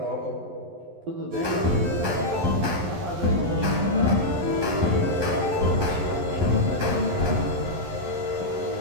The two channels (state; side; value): late; left; 11 ms